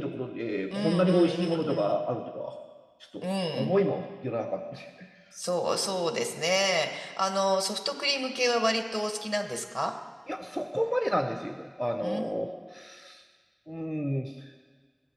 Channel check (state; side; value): identical; both; correlation 1.00